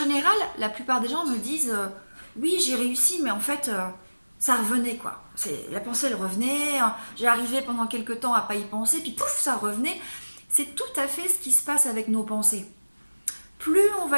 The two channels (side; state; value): both; inverted; correlation -1.00